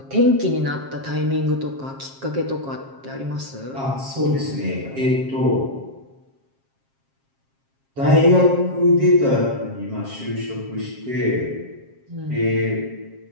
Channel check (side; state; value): left; late; 7.4 ms